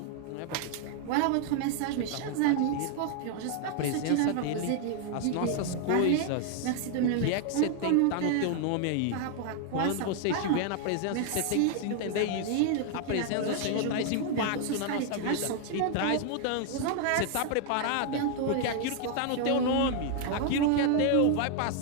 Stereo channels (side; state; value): both; different; correlation 0.00